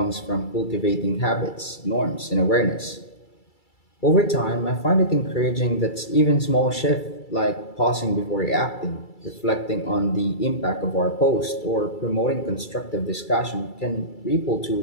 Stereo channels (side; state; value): right; late; 2.3 ms